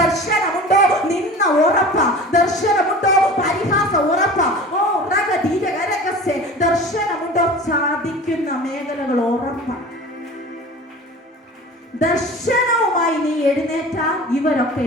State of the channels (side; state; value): both; normal; correlation 0.38